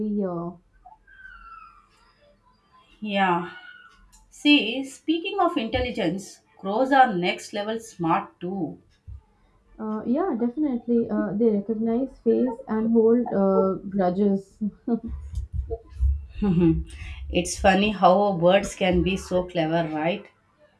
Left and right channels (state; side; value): identical; both; correlation 1.00